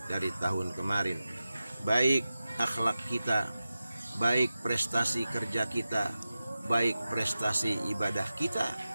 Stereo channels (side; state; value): both; inverted; correlation -0.94